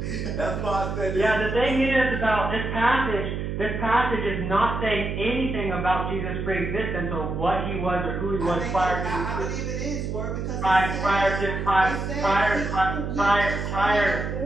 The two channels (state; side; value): noise; right; hum, 3 dB below the sound